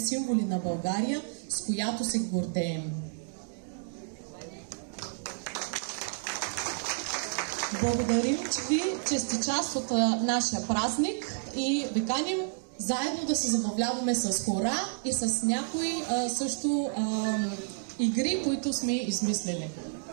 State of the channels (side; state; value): left; silent; digital silence